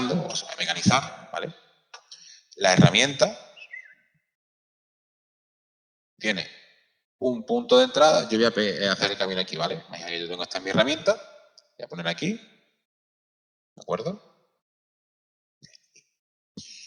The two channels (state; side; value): identical; both; correlation 1.00